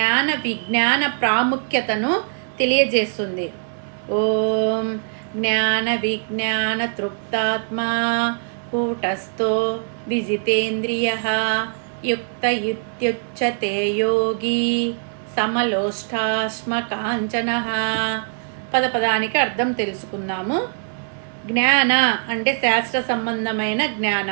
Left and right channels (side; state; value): left; silent; 64 dB below the other